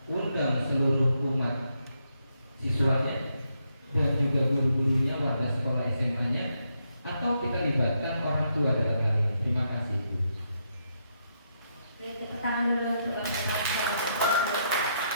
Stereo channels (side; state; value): both; inverted; correlation -0.79